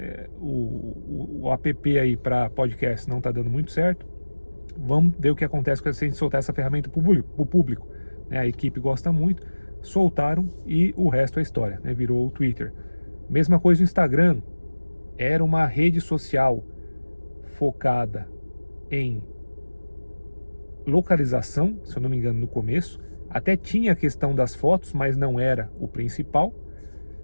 o app aí para podcast não está dando muito certo, vamos ver o que acontece quando a gente soltar essa ferramenta para o público. A equipe gosta muito, soltaram e o resto é história, virou o Twitter. Mesma coisa no Instagram, era uma rede social focada em localização, se eu não me engano no começo, até tinha a questão das fotos, mas não era o principal.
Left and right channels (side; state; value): both; inverted; correlation -1.00